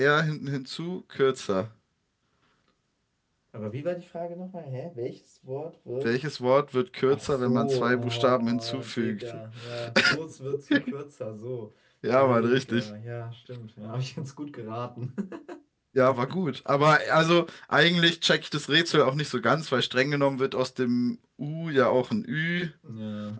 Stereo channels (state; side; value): identical; both; correlation 1.00